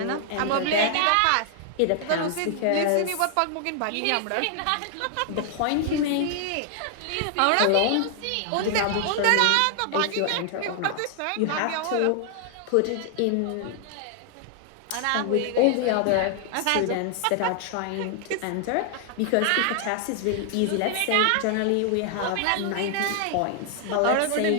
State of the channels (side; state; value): both; different; correlation 0.00